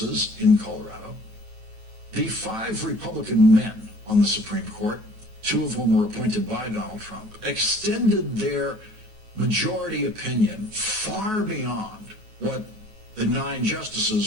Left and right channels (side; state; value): left; late; 9.2 ms